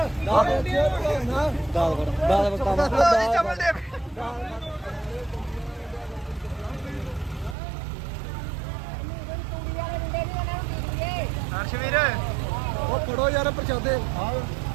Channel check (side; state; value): left; drops out; at 7.6 s